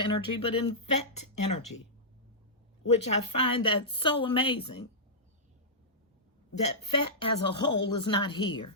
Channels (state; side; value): normal; both; correlation -0.13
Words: but in vet energy, which I find that so amazing. That vet as a whole is not here.